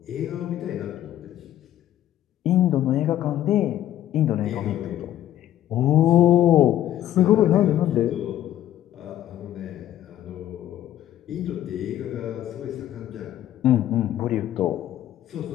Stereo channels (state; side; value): quieter; right; 12.3 dB